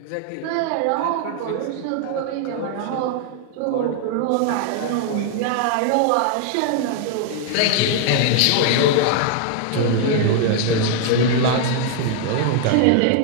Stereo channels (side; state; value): both; different; correlation 0.00